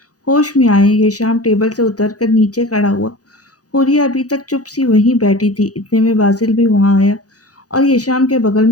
ہوش میں آئے۔ یہ شام ٹیبل سے اتر کر نیچے کھڑا ہوا۔ حوریہ ابھی تک چپ سی وہیں بیٹھی تھی، اتنے میں باسل بھی وہاں آیا اور یہ شام کے بغل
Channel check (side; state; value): right; late; 0.67 ms